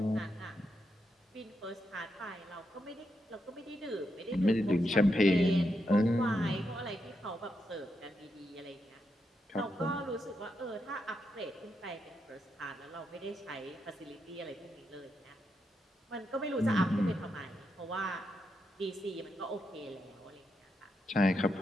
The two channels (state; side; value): normal; both; correlation 0.83